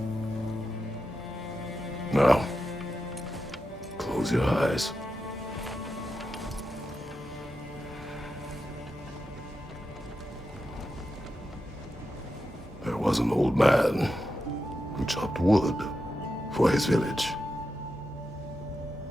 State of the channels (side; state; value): both; normal; correlation 0.88